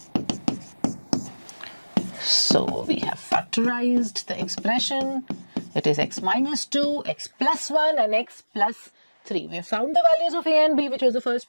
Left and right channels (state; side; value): inverted; both; correlation -1.00